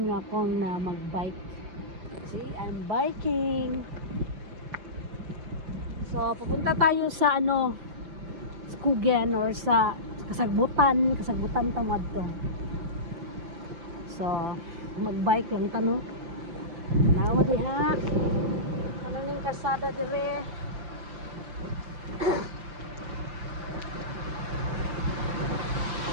nyo akong na mag-bike. See, I'm biking. So, pupunta tayo sa Skugen or sa Kasagbutan tamad to. So, mag-bike lang tanong. Nawa diha. Kanang kasada dire.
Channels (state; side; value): late; left; 5.8 ms